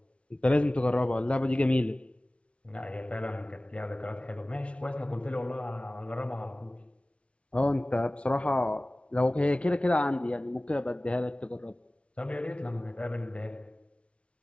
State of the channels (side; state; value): right; late; 0.060 ms